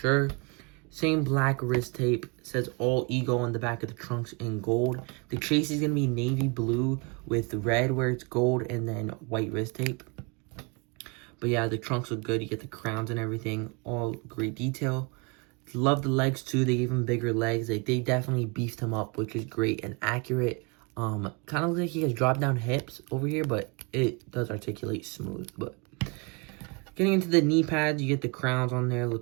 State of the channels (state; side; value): quieter; left; 30.4 dB